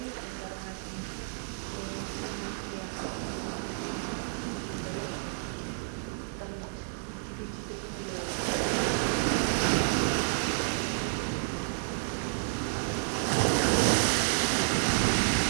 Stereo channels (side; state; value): left; silent; digital silence